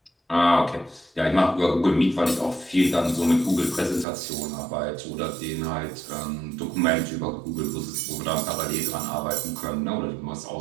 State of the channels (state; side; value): drops out; left; at 4.0 s